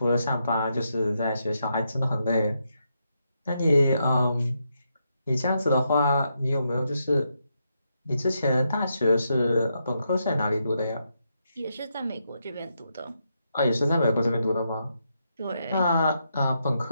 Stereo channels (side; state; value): both; inverted; correlation -0.81